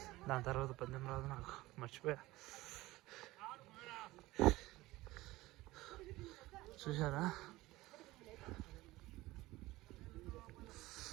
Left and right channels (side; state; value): left; quieter; 18.8 dB